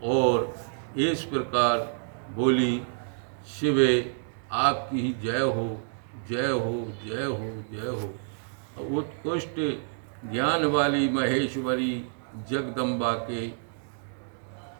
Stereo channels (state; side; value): silent; left; digital silence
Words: और इस प्रकार बोली, शिवे आपकी ही जय हो, जय हो, जय हो, जय हो। उत्कृष्ट ज्ञान वाली महेश्वरी जगदम्बा के